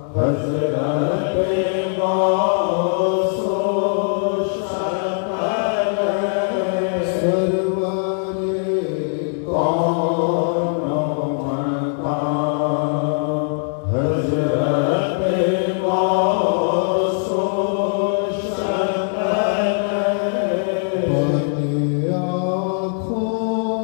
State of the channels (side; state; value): right; silent; digital silence